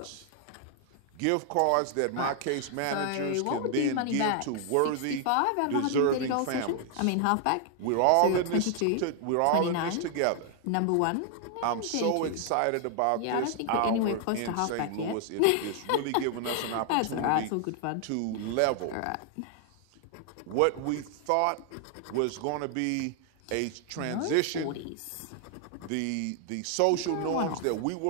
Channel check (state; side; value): different; both; correlation 0.00